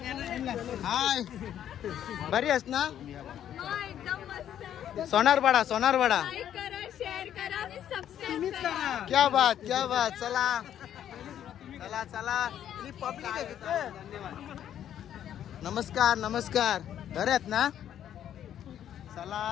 हाय, बरी आहेस ना? सोनारवाडा. क्या बात. चला. नमस्कार. बरे आहेत ना?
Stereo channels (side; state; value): right; quieter; 10.4 dB